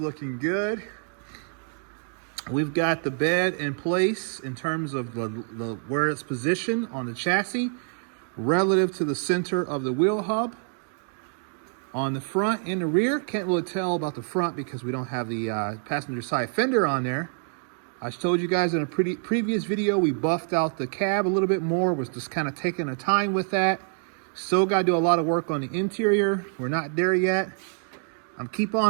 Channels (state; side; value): silent; left; 61 dB below the other